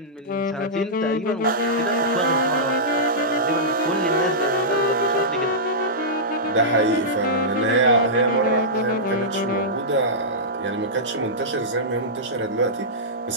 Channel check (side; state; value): both; normal; correlation -0.14